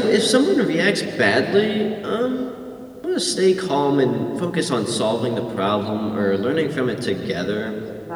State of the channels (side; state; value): both; identical; correlation 1.00